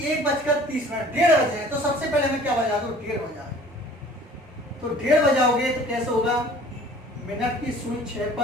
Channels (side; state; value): both; normal; correlation 0.49